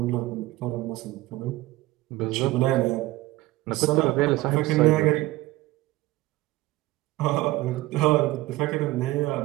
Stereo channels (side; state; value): left; quieter; 18.2 dB